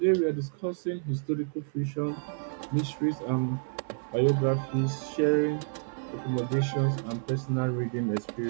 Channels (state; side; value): silent; left; 58 dB below the other